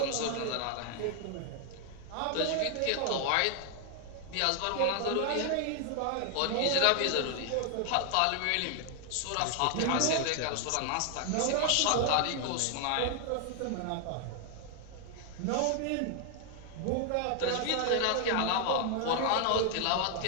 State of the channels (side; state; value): both; different; correlation 0.00